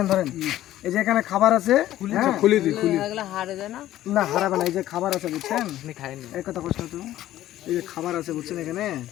ধরেন, এই যে এখানে খাবার আছে, খুলি দিই, খুলি না, হারাবে না, এই যে খাবার আছে, বুঝছেন, এই কথা কষ্ট তো, এই যে খাবার আছে, বুঝছেন, এখানে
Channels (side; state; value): right; quieter; 13.7 dB